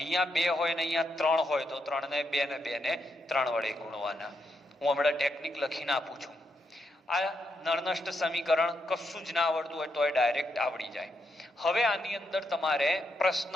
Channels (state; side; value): normal; both; correlation 0.81